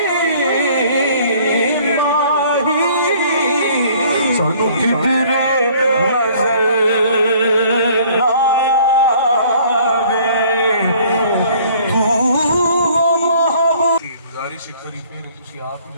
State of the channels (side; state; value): both; inverted; correlation -0.56